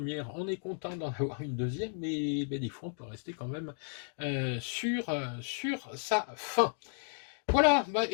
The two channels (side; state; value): right; silent; digital silence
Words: on est content d'en avoir une deuxième, mais ben, des fois on peut rester quand même sur sa fin. Voilà, bah